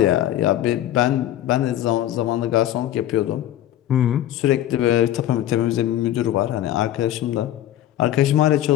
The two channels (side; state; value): right; quieter; 12.7 dB